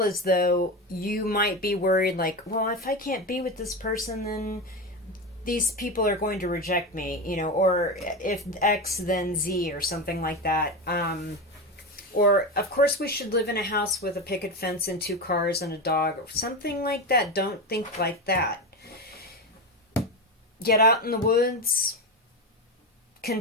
as though you might be worried, like, well, if I can't be with this person, then these people are going to reject me, or if X, then Z, or something like that. Or, of course, we should live in a house with a picket fence and 2 cars and a dog, or something like that. Don't think like that. Get out in the woods.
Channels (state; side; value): normal; both; correlation 0.19